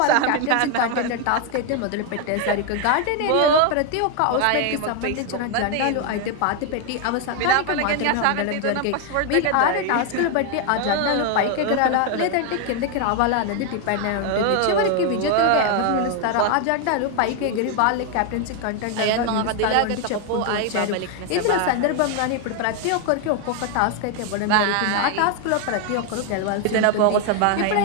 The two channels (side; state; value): both; different; correlation 0.01